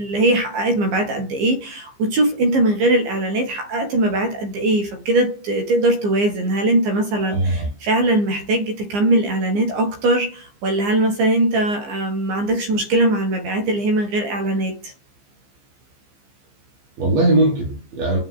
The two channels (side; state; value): left; late; 15 ms